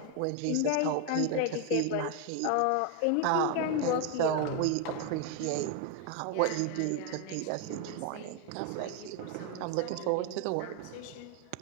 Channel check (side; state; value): both; different; correlation 0.01